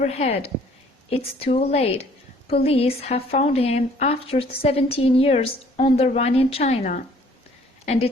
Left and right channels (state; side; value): normal; both; correlation 0.57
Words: it's too late. Police have found him after 17 years on the run in China, and